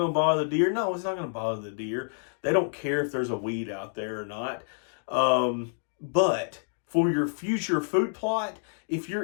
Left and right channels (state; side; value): silent; right; digital silence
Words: to bother the deer. No, it's not going to bother the deer. They don't care if there's a weed out there or not. But for your future food plot, if your